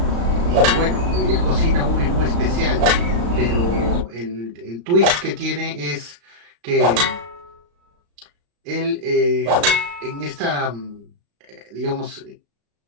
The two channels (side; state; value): left; late; 35 ms